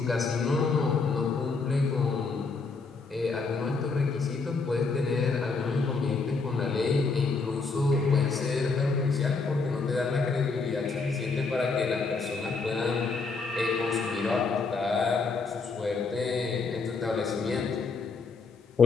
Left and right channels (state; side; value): quieter; right; 4.4 dB